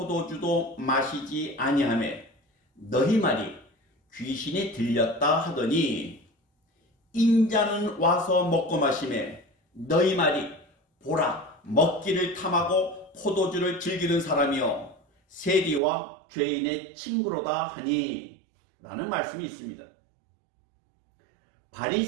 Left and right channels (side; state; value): left; drops out; at 15.8 s